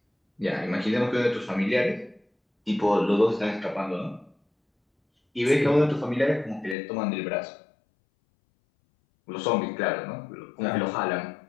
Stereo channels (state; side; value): drops out; right; at 6.8 s